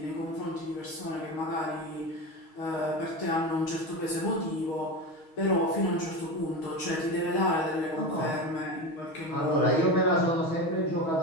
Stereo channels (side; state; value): right; late; 6.3 ms